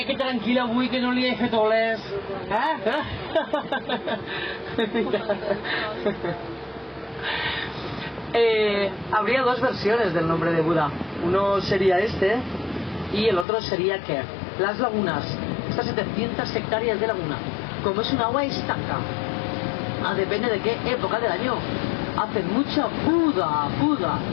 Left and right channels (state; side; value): drops out; right; at 13.5 s